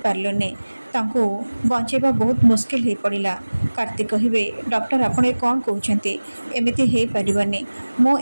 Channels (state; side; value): inverted; both; correlation -1.00